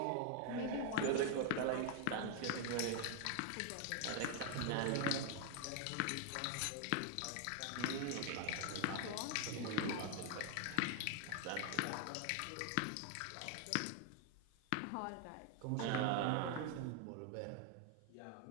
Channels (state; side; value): different; both; correlation 0.00